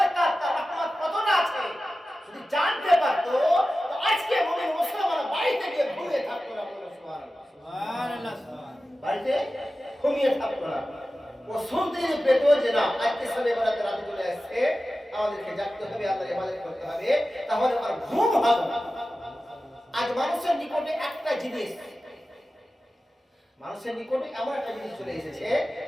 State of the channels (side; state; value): both; normal; correlation 0.94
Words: তার রহমত কতটা আছে, যদি জানতে পারতো তো আজকে মুমিন মুসলমান বাড়িতে গিয়ে ঘুমিয়ে থাকতো না। বলুন সুবহানাল্লাহ। বাড়িতে ঘুমিয়ে থাকতো না। ও শুনতে পেত যে না আজকে সবে বরাতে রাতে চলে আসছে, আমাদেরকে জাগতে হবে, আল্লাহর ইবাদত করতে হবে, তাহলে আর ঘুম হবে। আজ মানুষের নিকটে একটা জিনিস, মানুষের নিকটে এমন একটা জিনিস চলে এসেছে